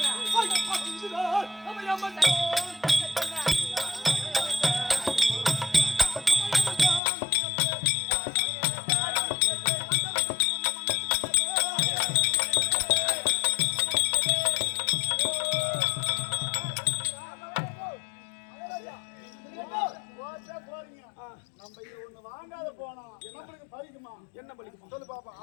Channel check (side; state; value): right; drops out; at 7.0 s